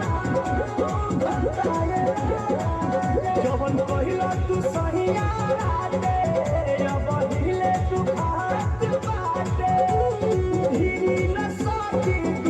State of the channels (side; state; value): both; identical; correlation 1.00